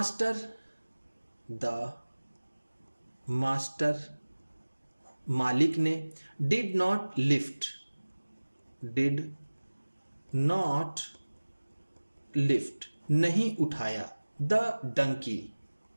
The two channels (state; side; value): inverted; both; correlation -1.00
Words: मास्टर मालिक ने। डिड नॉट लिफ्ट नहीं उठाया। द